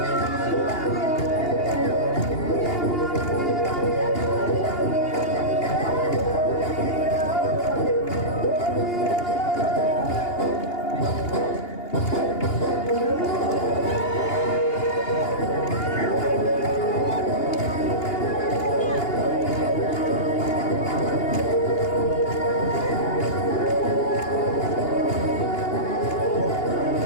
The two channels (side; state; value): right; late; 2.8 ms